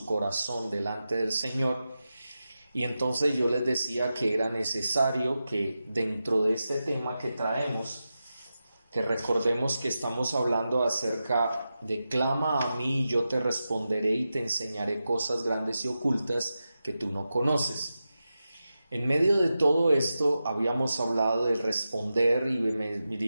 corazón delante del Señor. Y entonces yo les decía que era necesario que dentro de este tema que traemos, que recordemos que estamos hablando acerca de clama a mí y yo te responderé y te enseñaré cosas grandes y ocultas que tú no conoces. En medio de todo esto habíamos hablado del responder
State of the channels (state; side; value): inverted; both; correlation -0.91